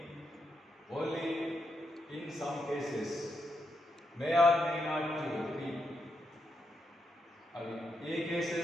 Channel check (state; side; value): normal; both; correlation 0.82